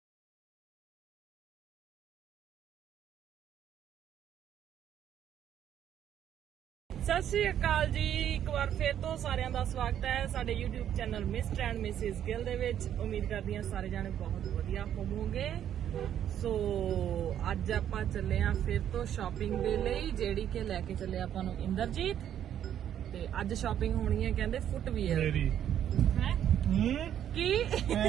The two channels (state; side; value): quieter; left; 10.1 dB